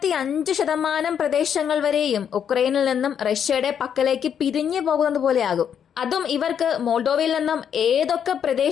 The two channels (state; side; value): quieter; right; 8.3 dB